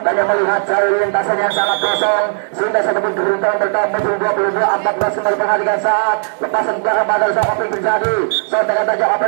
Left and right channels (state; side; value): silent; left; digital silence